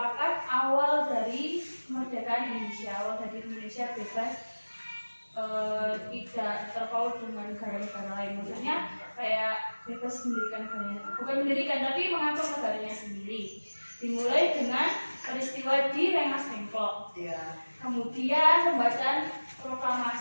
awal dari kemerdekaan Indonesia, awal dari Indonesia bebas, tidak terpaut dengan negara-negara lain. Maksudnya kayak bebas mendirikan negaranya, bukan mendirikan tapi mengatur negaranya sendiri. Dimulai dengan peristiwa di Rengas Dengklok. Iya. Kemudian pembacaan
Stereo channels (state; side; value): inverted; both; correlation -1.00